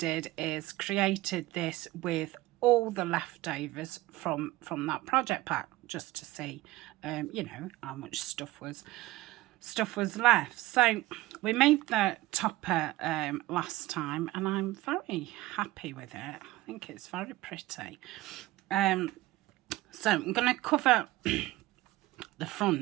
is created this with all the leftovers from that project pack, just to see you know, how much stuff was left. So we made the topper last time and I'm very happy with it. I think it's very pretty. So I'm going to cover the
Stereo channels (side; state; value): left; quieter; 18.2 dB